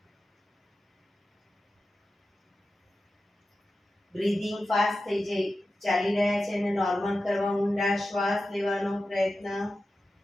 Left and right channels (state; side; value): normal; both; correlation 0.93